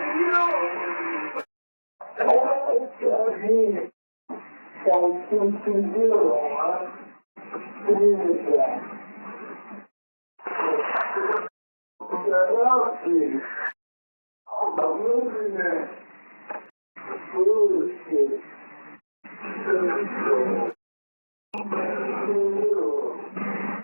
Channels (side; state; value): both; inverted; correlation -1.00